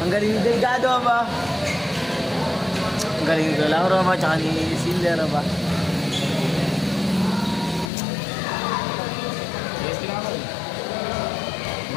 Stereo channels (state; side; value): drops out; right; at 7.9 s